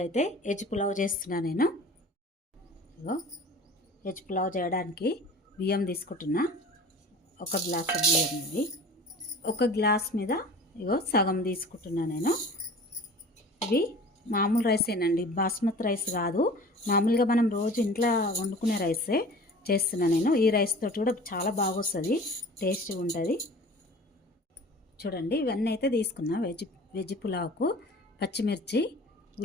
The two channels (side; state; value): both; normal; correlation 0.42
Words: అయితే వెజ్ పులావ్ చేస్తున్నా నేను. ఇగో వెజ్ పులావ్ చేయడానికి బియ్యం తీసుకుంటున్నా. ఒక గ్లాస్ బియ్యం ఇది. ఒక గ్లాస్ మీద ఇగో సగం తీసుకుంటున్నా నేను. ఇవి మామూలు రైసేనండి, బాస్మతి రైస్ కాదు. మామూలుగా మనం రోజు ఇంట్లో వండుకునే రైసే చేస్తున్నా నేను. ఈ రైస్ తోటి కూడా చాలా బాగా వస్తుంది, టేస్ట్గా ఉంటుంది. చూడండి, ఇవన్నీ అయితే తీసుకున్నా. వెజ్ పులావ్కు పచ్చిమిర్చి,